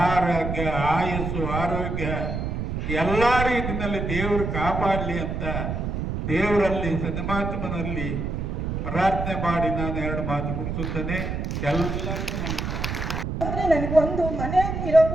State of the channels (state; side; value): noise; right; rumble, 3 dB below the sound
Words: ಆರೋಗ್ಯ, ಆಯಸ್ಸು, ಆರೋಗ್ಯ ಎಲ್ಲ ರೀತಿಯಲ್ಲಿ ದೇವರು ಕಾಪಾಡಲಿ ಅಂತ ದೇವರಲ್ಲಿ ಸನ್ಮಾತ್ಮನಲ್ಲಿ ಪ್ರಾರ್ಥನೆ ಮಾಡಿ ನಾನು 2 ಮಾತು ಮುಗಿಸುತ್ತೇನೆ. ಎಲ್ಲರಿಗೂ ನಮಸ್ಕಾರ. ಅಂದ್ರೆ ನನಗೊಂದು